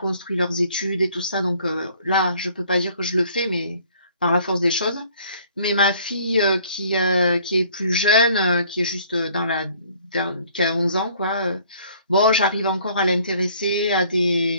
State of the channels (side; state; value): both; inverted; correlation -0.58